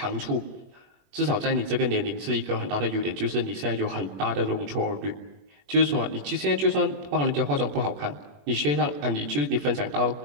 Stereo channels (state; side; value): late; left; 21 ms